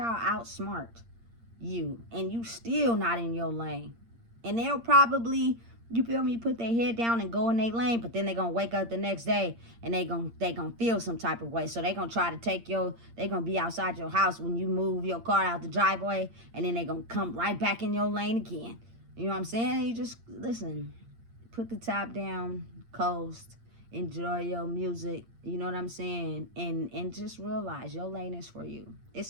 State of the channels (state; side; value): late; left; 8.7 ms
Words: I outsmart you. And you still not in your lane. And they'll probably, you feel me, put their head down and go in their lane, but then they're going to wake up the next day and they gonna feel some type of way. So they're going to try to take they're going to be outside your house when you move your car out the driveway, and then they're going to come right back in your lane again. You know what I'm saying? You just, listen, put the top down, coast, enjoy your music, you know what I'm saying? And just realize your lane is for you.